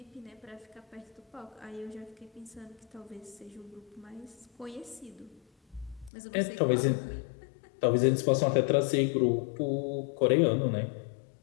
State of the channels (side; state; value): right; drops out; at 6.1 s